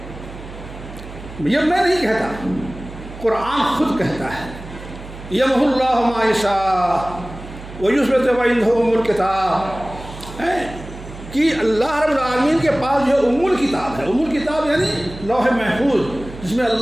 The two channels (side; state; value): right; noise; hum, 14 dB below the sound